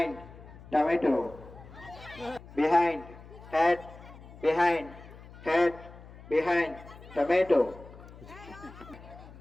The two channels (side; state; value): left; noise; hum, 18 dB below the sound